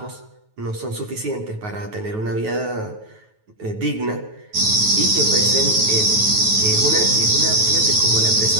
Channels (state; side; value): late; left; 9.3 ms